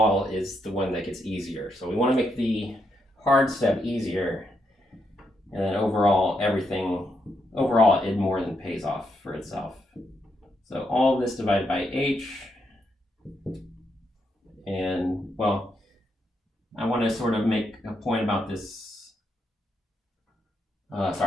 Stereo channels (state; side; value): normal; both; correlation 0.80